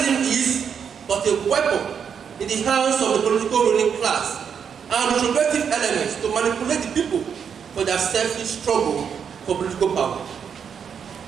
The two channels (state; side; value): quieter; left; 7.2 dB